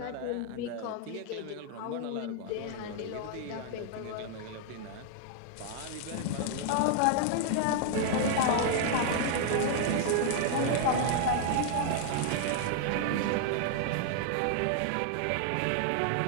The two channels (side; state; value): both; different; correlation 0.00